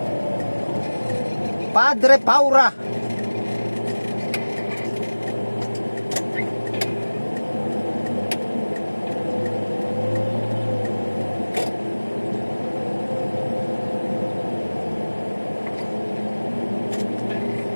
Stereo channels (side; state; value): both; inverted; correlation -1.00